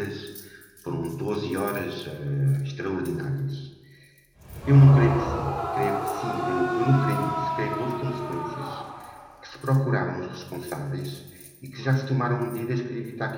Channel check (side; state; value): both; identical; correlation 1.00